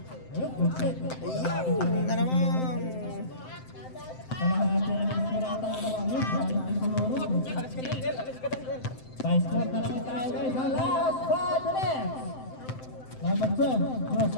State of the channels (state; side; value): late; right; 7.7 ms